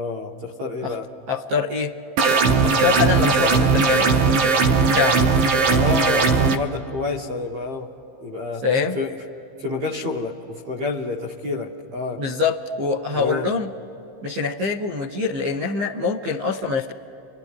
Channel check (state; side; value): late; left; 15 ms